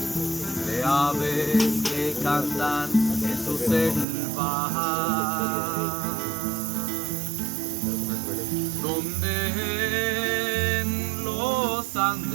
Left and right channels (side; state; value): left; drops out; at 4.0 s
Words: de aves que cantan en su selva, donde en los